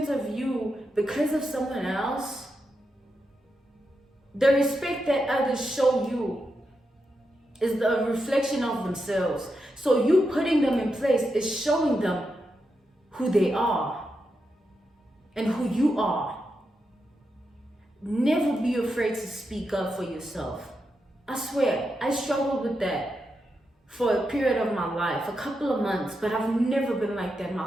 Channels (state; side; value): normal; both; correlation 0.86